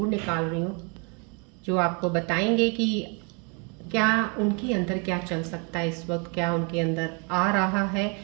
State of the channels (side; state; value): left; quieter; 34.1 dB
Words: निकाल रही हूँ, जो आपको बताएंगे कि क्या उनके अंदर क्या चल सकता है इस वक्त, क्या उनके अंदर आ रहा है।